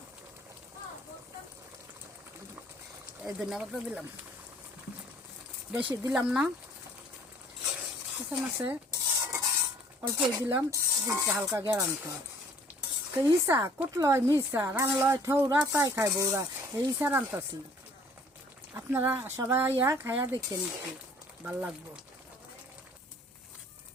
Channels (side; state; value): both; normal; correlation 0.55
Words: এই ধন্যবাদ দিলাম, বেশি দিলাম না। মাছে অল্প দিলাম, হালকা গেরান খায়। তো ইসা কুটলয় মিসা রানলয় ঠৌরা তাই খায় বৌরা, এই ইসা রান্তাছি। আপনারা সবাই আইয়া খাইয়া দেখেন, একটু ভাল লাগবো।